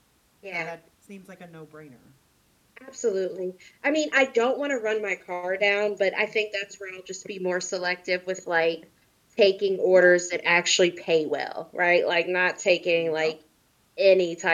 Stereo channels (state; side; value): identical; both; correlation 1.00